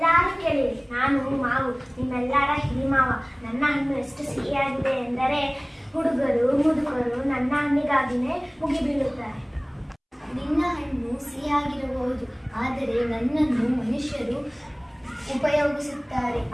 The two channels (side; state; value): both; identical; correlation 1.00